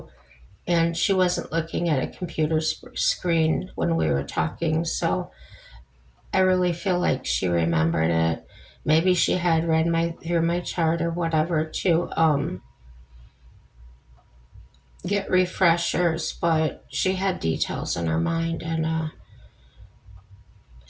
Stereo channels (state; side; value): identical; both; correlation 1.00